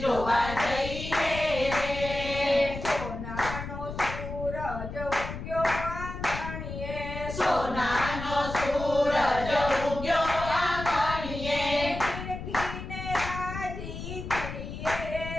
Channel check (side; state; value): left; noise; rumble, 8 dB below the sound